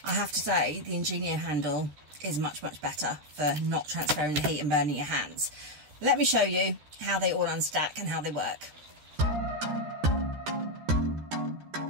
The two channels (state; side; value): late; left; 13 ms